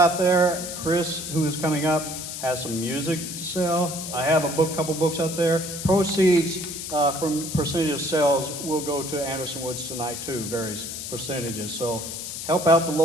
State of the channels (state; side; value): noise; left; hiss, 7 dB below the sound